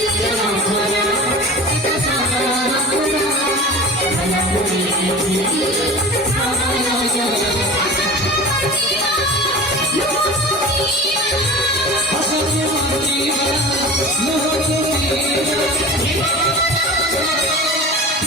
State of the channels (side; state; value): both; normal; correlation 0.35